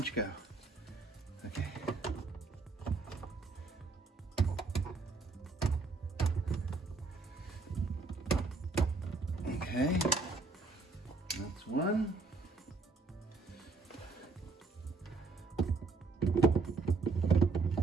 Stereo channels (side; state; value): left; quieter; 4.0 dB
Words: go? Okay. Okay, that's 1.